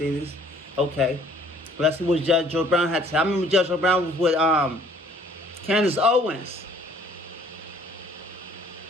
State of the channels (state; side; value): normal; both; correlation 0.57